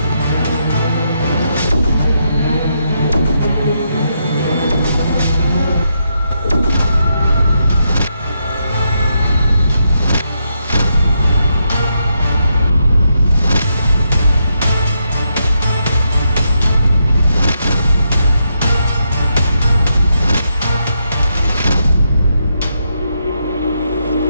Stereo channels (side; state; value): both; inverted; correlation -0.81